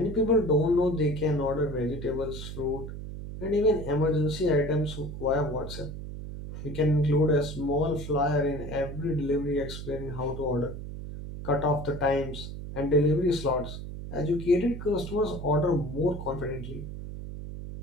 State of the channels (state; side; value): noise; right; hum, 9 dB below the sound